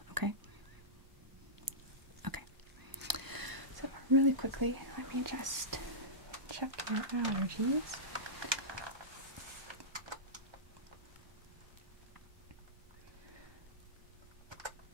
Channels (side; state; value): left; late; 1.2 ms